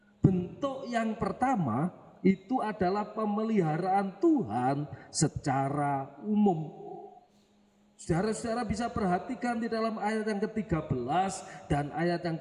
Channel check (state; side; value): identical; both; correlation 1.00